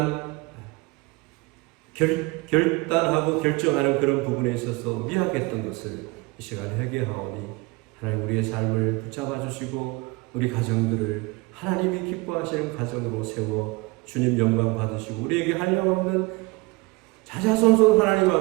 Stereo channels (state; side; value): quieter; left; 24.6 dB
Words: 결단하고 결정하는 그런 부분에 있어서 미약했던 것을 이 시간에 회개하오니 하나님, 우리의 삶을 붙잡아 주시고 우리 가정들을 하나님이 기뻐하시는 가정으로 세워 주님 영광 받으시고 우리에게 한량없는 자자손손 하나님